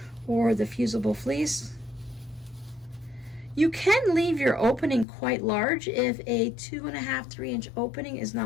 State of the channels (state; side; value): drops out; right; at 5.1 s